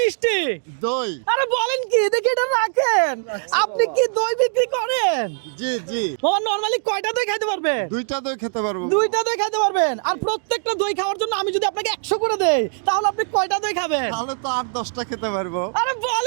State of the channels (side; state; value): left; silent; digital silence